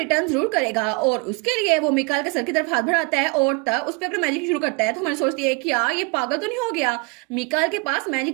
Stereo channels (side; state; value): left; quieter; 31.2 dB